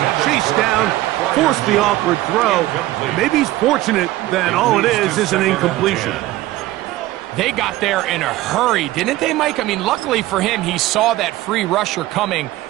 chased down, forced the awkward throw. Maybe he's fortunate that all it is an incompletion. They got there in a hurry, didn't they, Mike? I mean, luckily for him, he saw that free rusher coming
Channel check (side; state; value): left; quieter; 16.6 dB